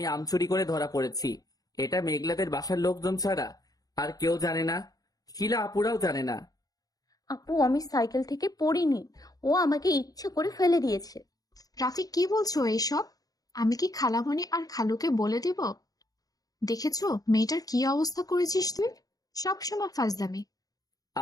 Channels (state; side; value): late; right; 0.18 ms